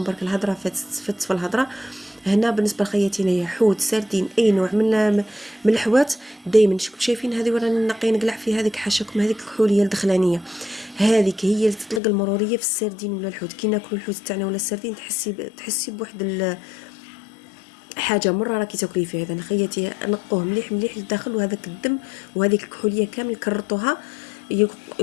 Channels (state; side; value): drops out; right; at 12.0 s